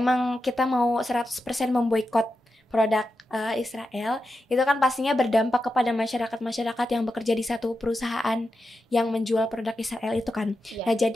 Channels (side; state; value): both; normal; correlation 0.89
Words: kita mau 100% memboikot produk Israel, itu kan pastinya berdampak kepada masyarakat-masyarakat yang bekerja di satu perusahaan yang menjual produk Israel itu kan. Iya. Nah